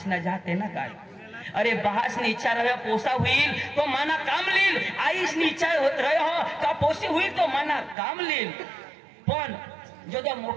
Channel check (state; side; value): drops out; left; at 8.0 s